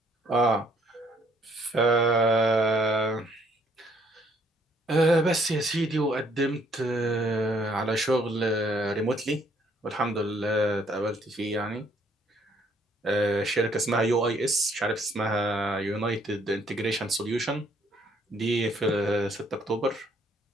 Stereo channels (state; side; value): normal; both; correlation 0.65